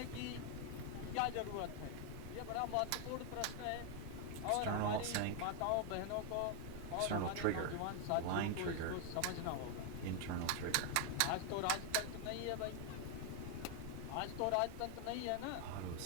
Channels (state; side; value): different; both; correlation 0.00